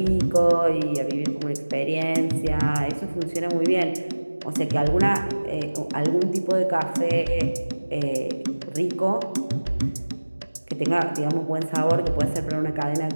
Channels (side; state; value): both; inverted; correlation -1.00